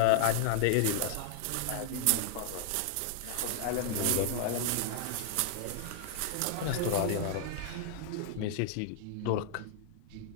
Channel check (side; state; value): both; different; correlation 0.00